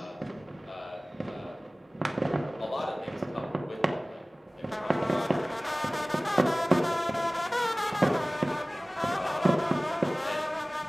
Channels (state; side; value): normal; both; correlation 0.98